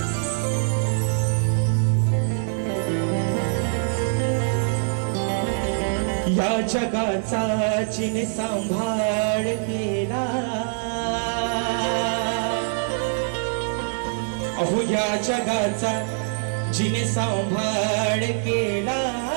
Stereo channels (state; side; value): silent; left; digital silence